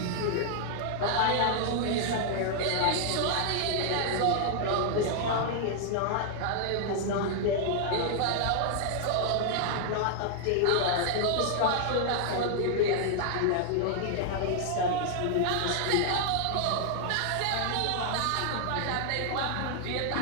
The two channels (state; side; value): different; both; correlation 0.00